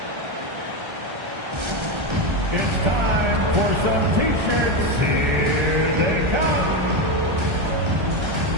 It's time for some T-shirts. Here they come.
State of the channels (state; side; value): late; left; 1.3 ms